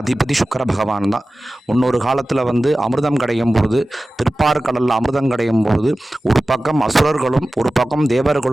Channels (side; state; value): both; normal; correlation 0.96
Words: அதிபதி சுக்கர பகவான் தான். முன்னொரு காலத்தில் அமிர்தம் கிடைக்கும் பொழுது, திருப்பார்கடலில் அமிர்தம் கிடைக்கும் பொழுது ஒரு பக்கம் அசுரர்களும் ஒரு பக்கம்